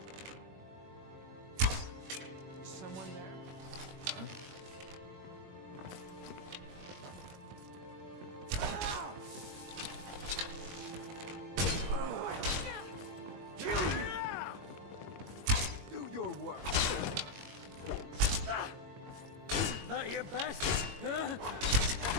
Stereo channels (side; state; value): left; late; 21 ms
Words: Someone there? Do your work. That your best? Huh?